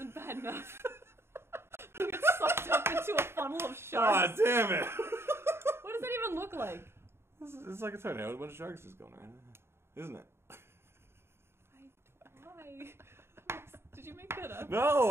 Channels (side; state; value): left; late; 0.12 ms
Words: bad enough. It's sucked up into a funnel of Oh, sharks. damn it! What does that even look like? It's like a tornado with a bunch of sharks just going around, isn't it? Why? Did you make that up?